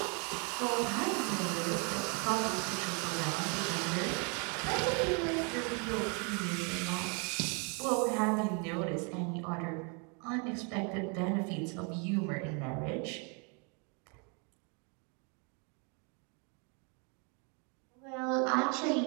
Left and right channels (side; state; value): left; quieter; 35.4 dB